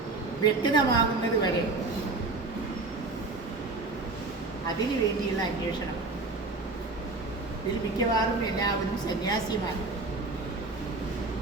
വ്യക്തമാകുന്നത് വരെ അതിനു വേണ്ടിയുള്ള അന്വേഷണം. ഇതിൽ മിക്കവാറും എല്ലാവരും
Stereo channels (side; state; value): left; quieter; 3.4 dB